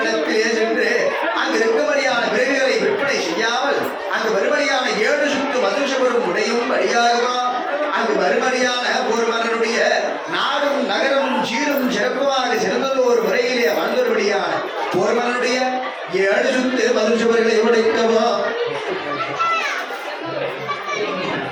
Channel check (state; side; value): identical; both; correlation 1.00